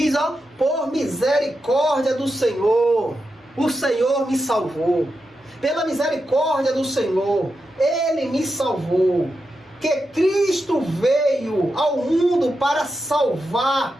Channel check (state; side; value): normal; both; correlation 0.88